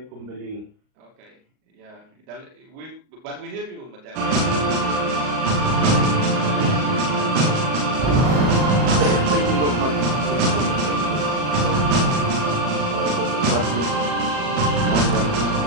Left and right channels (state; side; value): late; left; 38 ms